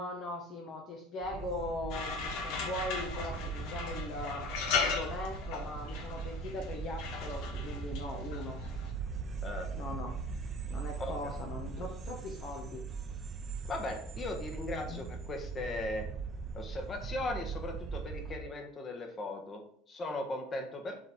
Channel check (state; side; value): normal; both; correlation 0.46